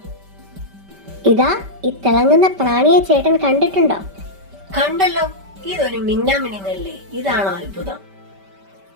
ഇതാ ഈ തിളങ്ങുന്ന പ്രാണിയെ ചേട്ടൻ കണ്ടിട്ടുണ്ടോ? കണ്ടല്ലോ, ഇതൊരു മിന്നാമിനുങ്ങല്ലേ. ഇതാണോ അത്ഭുതം?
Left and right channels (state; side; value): late; left; 5.1 ms